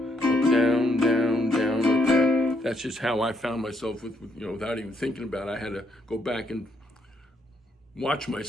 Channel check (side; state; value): both; normal; correlation 0.74